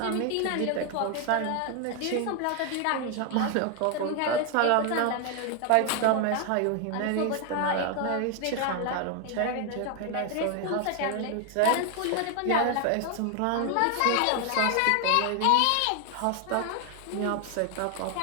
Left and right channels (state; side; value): different; both; correlation 0.01